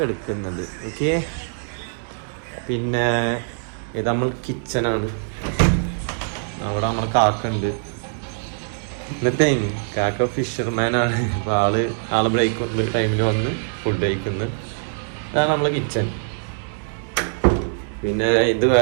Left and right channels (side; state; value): left; silent; digital silence